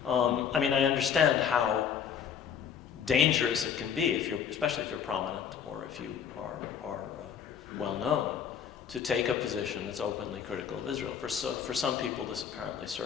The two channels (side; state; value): right; quieter; 7.8 dB